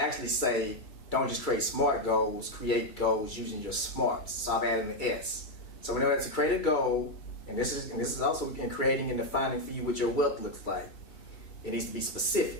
say, don't just create SMART goals, create goals using your smarts. So I've added an S. So we know that to create a goal, and this is also in creating and defining for you what your wealth looks like. It needs to be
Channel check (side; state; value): right; late; 2.3 ms